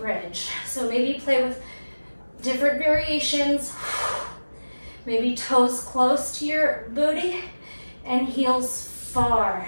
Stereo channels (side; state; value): both; inverted; correlation -1.00